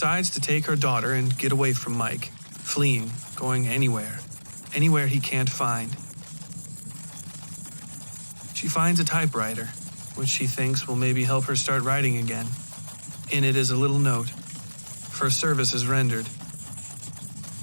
to take her daughter and get away from Mike, fleeing, going anywhere he can't find. She finds a typewriter, which she thinks will maybe help her start writing again. In it is a little note, for services rendered.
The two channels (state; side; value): inverted; both; correlation -1.00